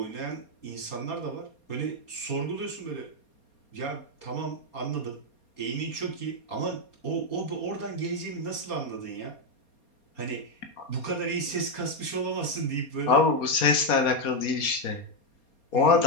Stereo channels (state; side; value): late; right; 4.3 ms